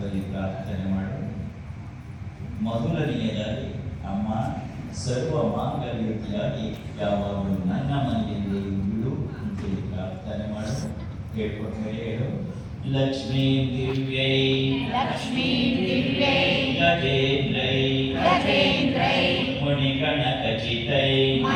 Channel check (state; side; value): identical; both; correlation 1.00